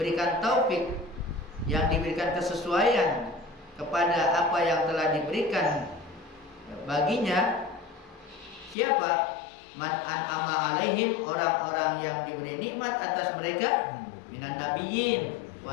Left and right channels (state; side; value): drops out; right; at 8.8 s